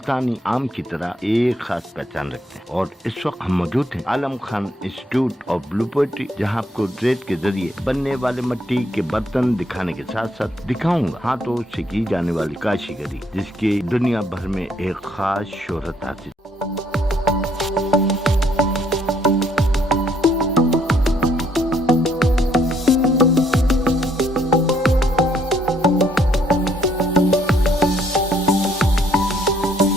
آم کی طرح ایک خاص پہچان رکھتے ہیں۔ اور اس وقت ہم موجود ہیں Alam Khan institute of blue pottery, جہاں آپ کو ریت کے ذریعے بننے والے مٹی کے برتن دکھانے کے ساتھ ساتھ دکھاؤں گا ہاتھوں سے کی جانے والی کاشی گری، جس کی دنیا بھر میں ایک خاص شہرت حاصل۔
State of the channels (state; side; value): normal; both; correlation 0.69